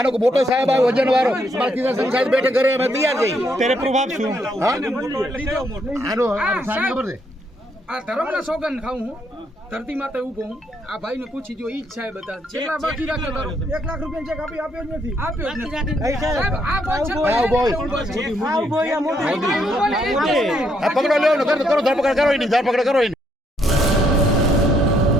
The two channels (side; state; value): both; normal; correlation 0.73